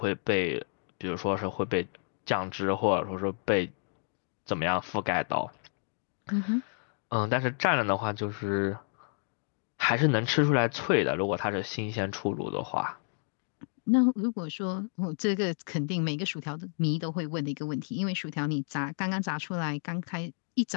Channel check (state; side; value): silent; right; 57 dB below the other